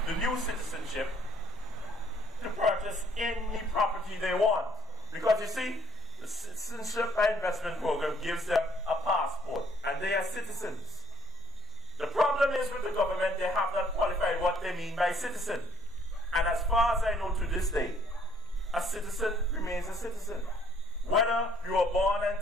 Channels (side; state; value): both; normal; correlation 0.57